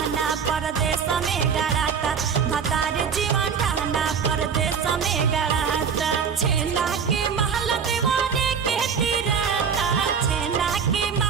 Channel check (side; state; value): left; quieter; 6.7 dB